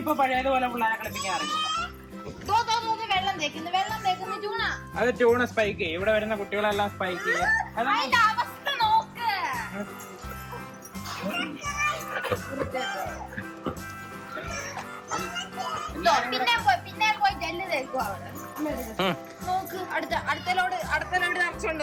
ഇപ്പൊ പഴയതുപോലെ പിള്ളേരെ കളിപ്പിക്കാൻ അറിയില്ല. അത് ചൂണ സ്പൈക്ക് ചെയ്യും. ഇവിടെ വരുന്ന കുട്ടികളെല്ലാം സ്പൈക്ക് ചെയ്യും.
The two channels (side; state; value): both; identical; correlation 1.00